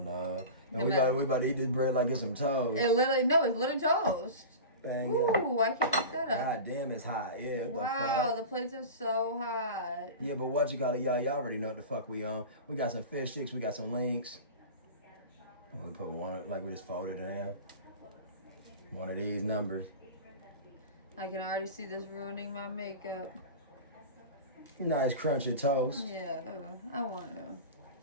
No, we about to eat this bread like it's some toast. It's literally toast. Bang, ooh, yeah. I can't pick that up. God damn, it's hot. Yeah. Wow, the plates are so hot. Yeah, but what you call it, y'all already know what the fuck we on. We got some fish sticks, we got some links. We put one, like we just folded it in half. One of these numbers. I can already see this ruining my makeup. Nice crunchy toast. Yeah, I want to.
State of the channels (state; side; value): inverted; both; correlation -0.31